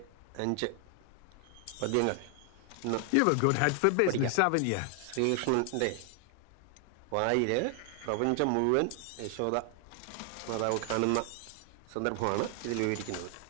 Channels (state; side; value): different; both; correlation 0.00